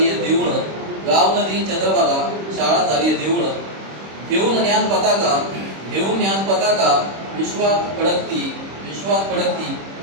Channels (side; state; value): left; late; 26 ms